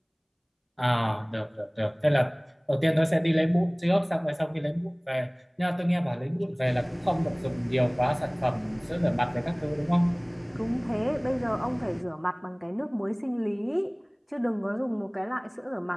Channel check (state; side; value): identical; both; correlation 1.00